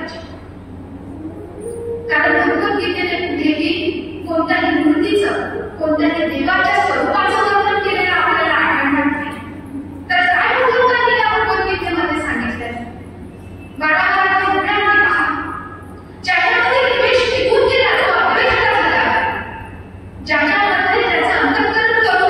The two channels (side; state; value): both; identical; correlation 1.00